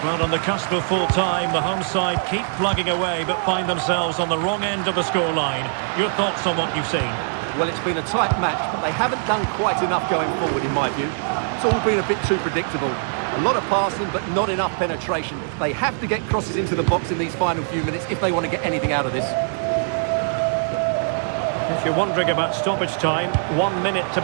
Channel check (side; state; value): left; silent; digital silence